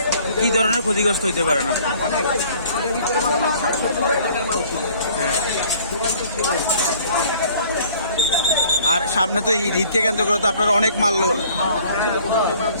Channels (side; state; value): both; inverted; correlation -0.55